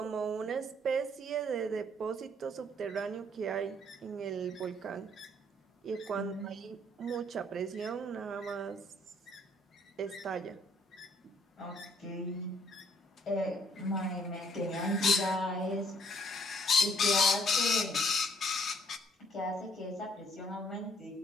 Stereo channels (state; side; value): normal; both; correlation 0.65